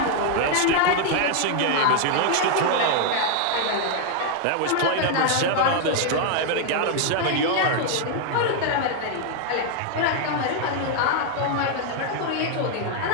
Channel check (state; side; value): different; both; correlation 0.00